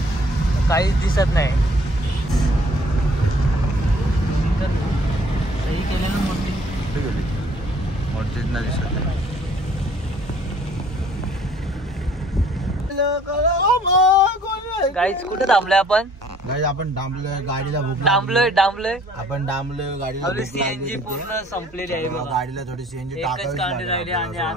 काहीच दिसत नाही. सही केलेलं मोठी दिसत गाईच. कुठे थांबलोय आपण? आपण डांबलोय गाडीला. डांबलोय आपण डांबलोय गाडीला. आपली सीएनजी पूर्ण संपलेली आहे बघा. गाडीला थोडी सीएनजी एकच कांडी राहिली आणि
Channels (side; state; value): both; normal; correlation 0.57